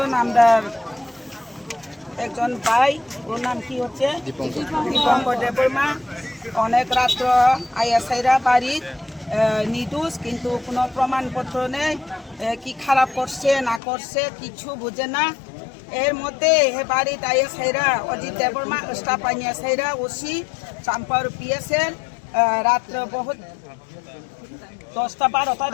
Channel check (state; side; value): drops out; right; at 13.8 s